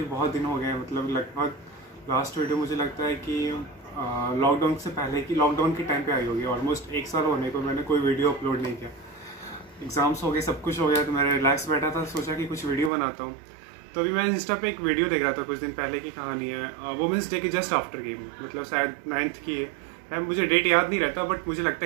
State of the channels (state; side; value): drops out; left; at 12.9 s